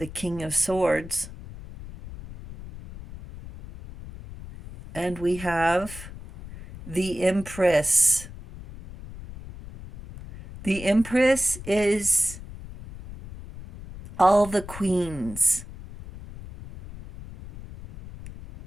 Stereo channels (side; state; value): left; noise; rumble, 14 dB below the sound